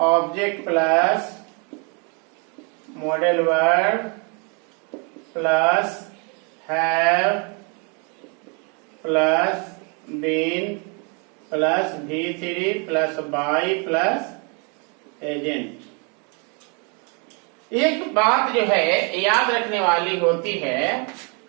plus modal verb plus have plus been plus V3 plus by plus agent. एक बात जो है याद रखने वाली होती है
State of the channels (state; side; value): quieter; left; 35.1 dB